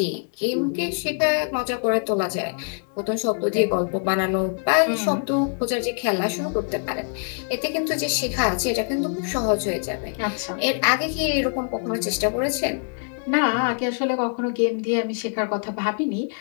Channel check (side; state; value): right; silent; 57 dB below the other